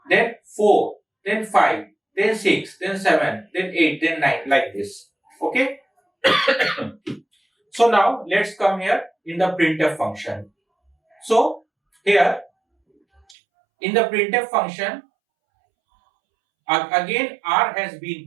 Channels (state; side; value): drops out; left; at 13.4 s